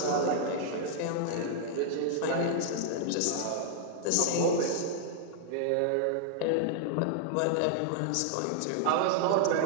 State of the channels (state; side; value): different; both; correlation -0.01